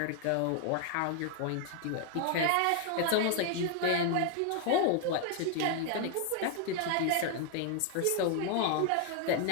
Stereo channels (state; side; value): different; both; correlation 0.00